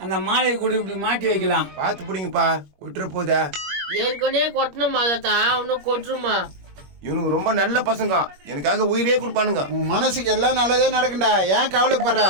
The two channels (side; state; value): left; late; 21 ms